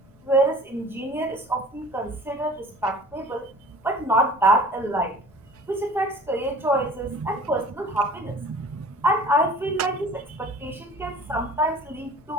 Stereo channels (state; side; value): noise; left; rumble, 28 dB below the sound